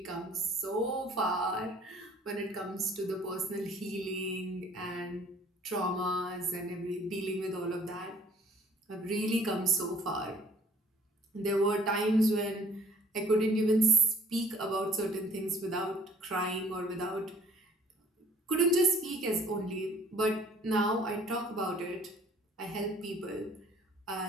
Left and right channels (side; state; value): both; normal; correlation 0.56